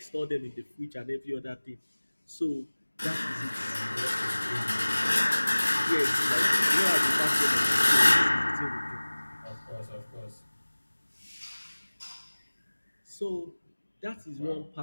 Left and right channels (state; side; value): inverted; both; correlation -1.00